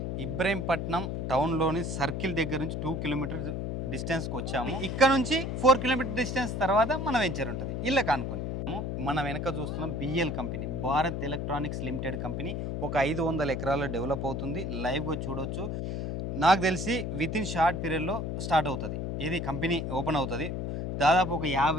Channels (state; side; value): noise; left; hum, 2 dB below the sound